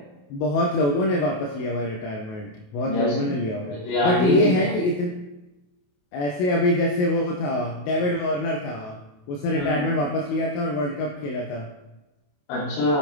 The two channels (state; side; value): late; right; 28 ms